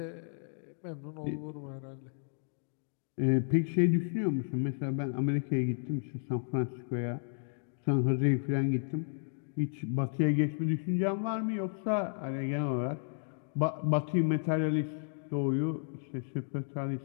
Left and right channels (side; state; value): right; silent; digital silence